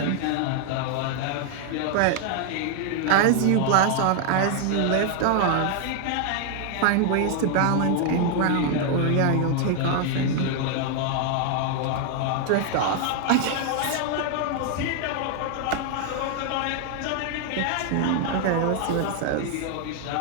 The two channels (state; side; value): different; both; correlation 0.00